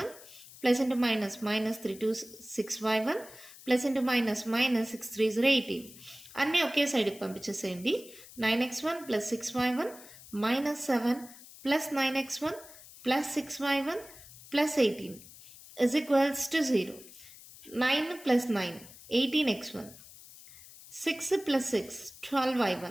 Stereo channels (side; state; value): left; noise; hiss, 19 dB below the sound